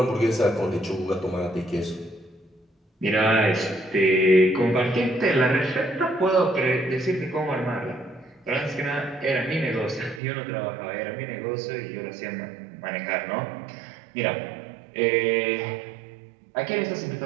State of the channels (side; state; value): left; drops out; at 10.2 s